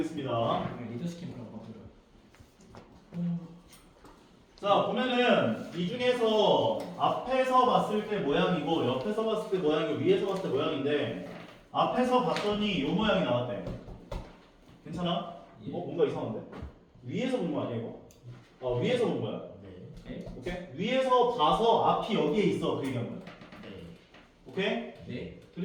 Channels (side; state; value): both; identical; correlation 1.00